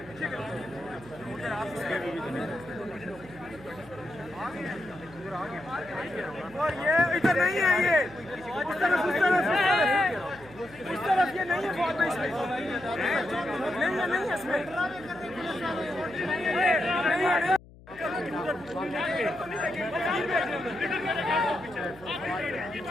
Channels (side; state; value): left; noise; hum, 22 dB below the sound